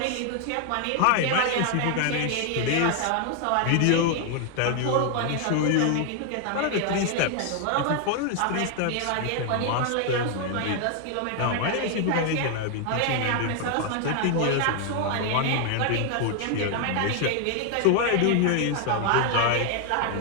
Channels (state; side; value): different; both; correlation 0.00